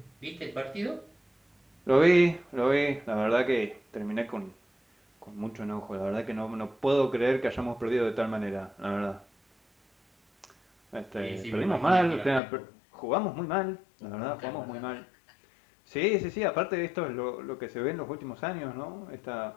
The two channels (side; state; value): right; drops out; at 12.4 s